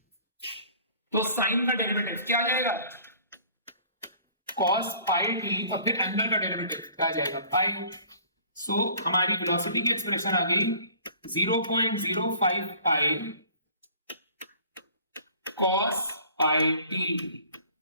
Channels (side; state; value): both; inverted; correlation -0.51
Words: तो साइन का डेरिवेटिव क्या आ जाएगा, कॉस पाई टी, और फिर एंगल का डेरिवेटिव क्या आ जाएगा, पाई। सो हमारी वेलोसिटी की एक्सप्रेशन आ गई 0.05 पाई कॉस पाई टी।